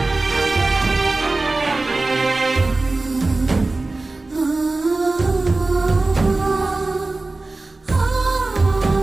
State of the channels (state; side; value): quieter; left; 3.3 dB